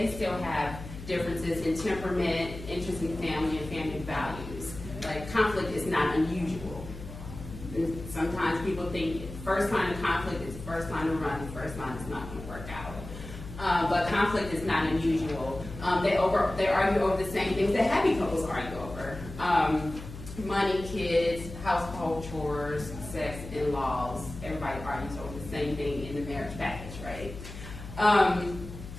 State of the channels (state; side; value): noise; left; hum, 12 dB below the sound